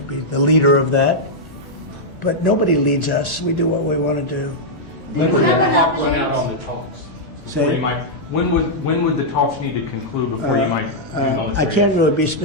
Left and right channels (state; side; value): normal; both; correlation -0.05